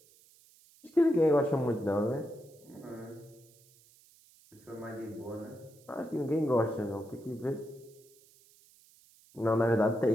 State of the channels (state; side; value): noise; right; hiss, 28 dB below the sound